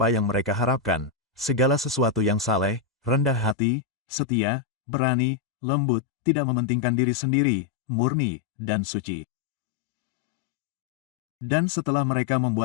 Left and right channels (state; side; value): drops out; right; at 3.6 s